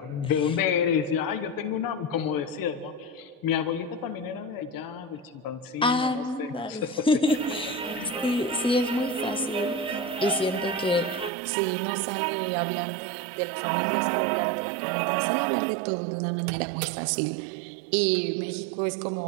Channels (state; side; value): drops out; left; at 11.3 s